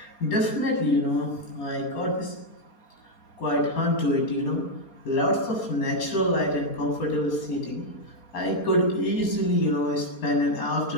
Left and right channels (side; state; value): right; late; 4.3 ms